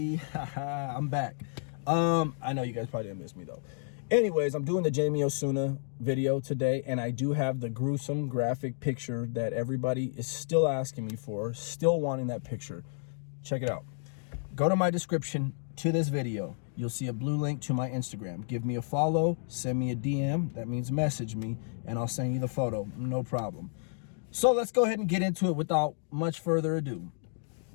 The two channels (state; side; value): silent; right; digital silence